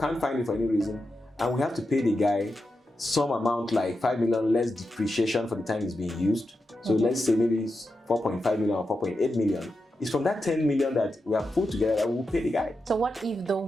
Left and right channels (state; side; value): normal; both; correlation 0.89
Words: find it for any reason, and we have to pay the guy some amount like 5 million less depreciation for the time it's being used. So let's say maybe it's 4.5 million or 4.8 million. It's from that 10 million that we have put together that we'll pay the guy. So what if the